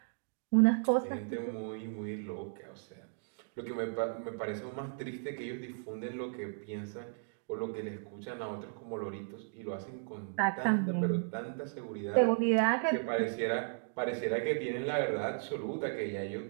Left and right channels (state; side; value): silent; left; digital silence